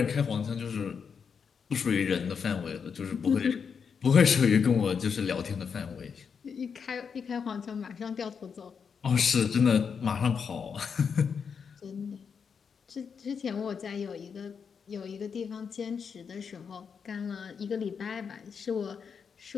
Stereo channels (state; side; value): quieter; right; 6.4 dB